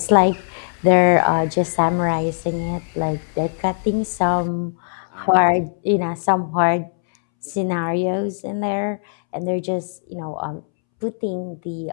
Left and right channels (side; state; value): right; silent; 65 dB below the other